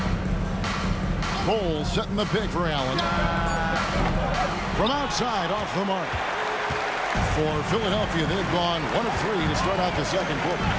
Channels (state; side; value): identical; both; correlation 1.00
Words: Cole setting the pick for Allen. From outside, off the mark. For Philadelphia, they've gone 1 of 3 to start out the second quarter.